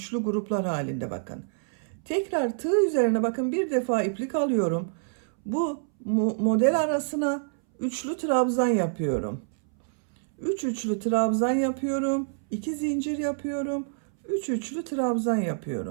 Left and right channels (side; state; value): left; silent; 60 dB below the other